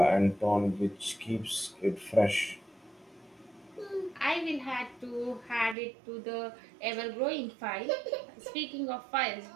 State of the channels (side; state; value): left; drops out; at 5.8 s